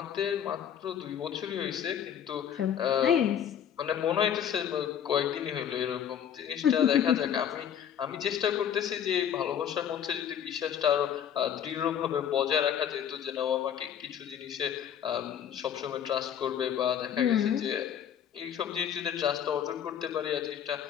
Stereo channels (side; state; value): right; quieter; 9.1 dB